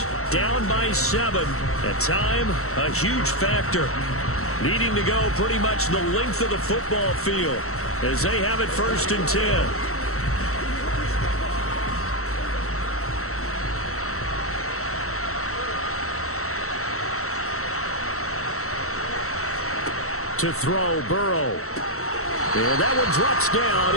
Down by 7. At time, a huge factor. Needing to go pretty much the length of the football field as they have it 1st and 10. To throw, Burrow. And that one drops down,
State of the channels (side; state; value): right; late; 0.63 ms